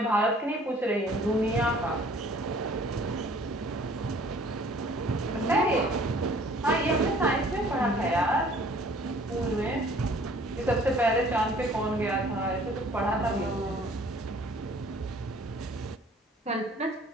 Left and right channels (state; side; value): normal; both; correlation 0.54